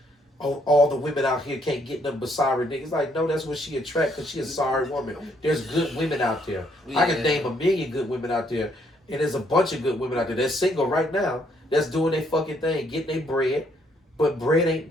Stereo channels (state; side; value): normal; both; correlation 0.70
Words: oh, all the women out here can't get them but sorry niggas. Like, no, that's what she attract because she a sorry woman. There's good women out there. Yeah. I can name a million good women out there. And there's a bunch of good women out there that's single right now that's doing their fucking thing, getting their bread. But bread ain't